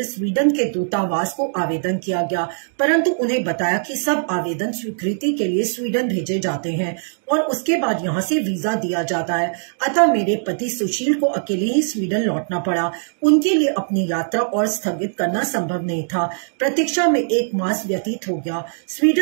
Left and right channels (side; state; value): left; silent; digital silence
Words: स्वीडन के दूतावास को आवेदन किया गया, परंतु उन्हें बताया कि सब आवेदन स्वीकृति के लिए स्वीडन भेजे जाते हैं और उसके बाद यहाँ से वीजा दिया जाता है। अतः मेरे पति सुशील को अकेले ही स्वीडन लौटना पड़ा। उनके लिए अपनी यात्रा और स्थगित करना संभव नहीं था। प्रतीक्षा में 1 मास व्यतीत हो गया।